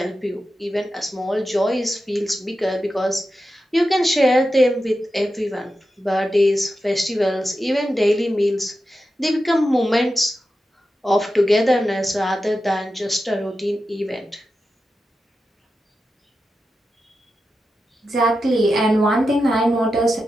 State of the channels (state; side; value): normal; both; correlation 0.91